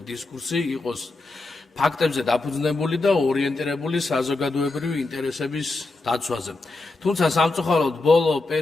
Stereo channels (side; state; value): right; quieter; 3.3 dB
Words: დისკურსი იყოს ფაქტებზე დაფუძნებული და ორიენტირებული საზოგადოებრივი ინტერესების დაცვაზე. თუმცა სამწუხაროდ ბოლო